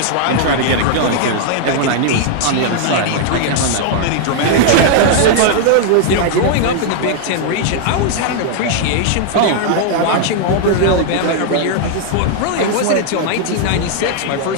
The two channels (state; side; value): different; both; correlation 0.00